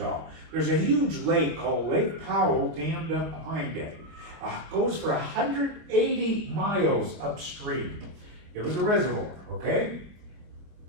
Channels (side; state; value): left; late; 25 ms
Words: There's a huge lake called Lake Powell dammed up behind it. Goes for 180 miles upstream. It was a reservoir, okay?